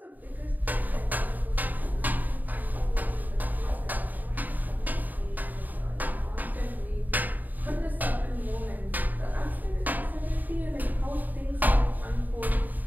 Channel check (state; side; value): late; left; 0.085 ms